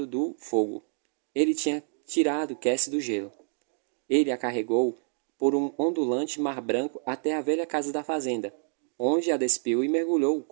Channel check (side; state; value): left; silent; digital silence